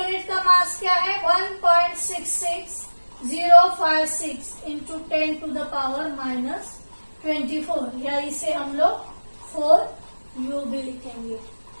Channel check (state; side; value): inverted; both; correlation -1.00